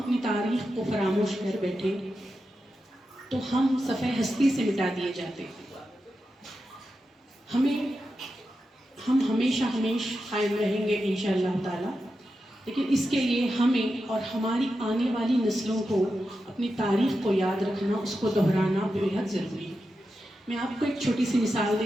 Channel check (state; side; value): normal; both; correlation 0.89